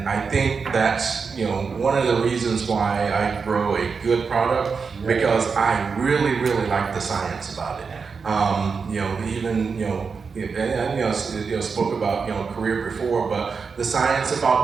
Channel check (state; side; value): quieter; left; 5.3 dB